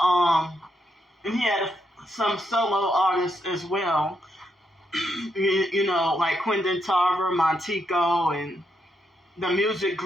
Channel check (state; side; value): normal; both; correlation 0.80